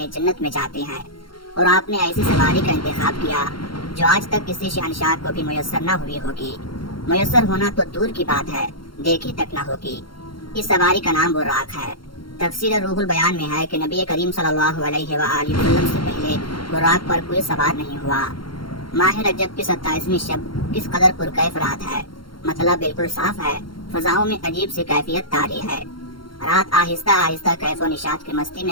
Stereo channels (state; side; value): late; right; 0.73 ms